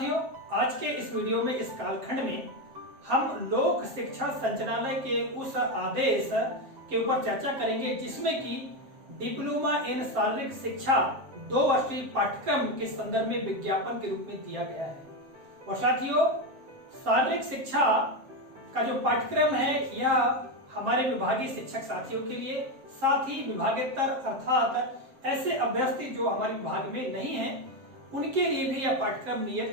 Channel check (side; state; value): left; late; 7.5 ms